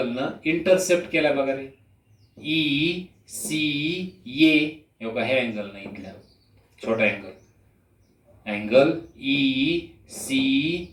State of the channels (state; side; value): identical; both; correlation 1.00